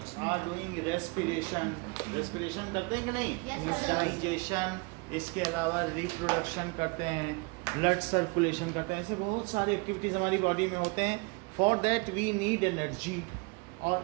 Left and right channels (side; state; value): left; quieter; 29.6 dB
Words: are doing respiration करते हैं कि नहीं? डाइजेशन, इसके अलावा रिप्रोडक्शन करते हैं, ब्लड सर्कुलेशन करते हैं, ऐसे बहुत सारे एक्टिविटीज हमारी बॉडी में होते हैं. For that we need energy,